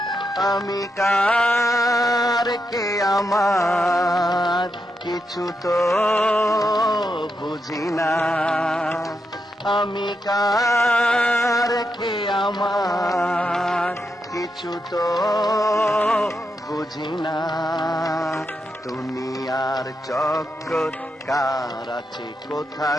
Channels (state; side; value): normal; both; correlation 0.84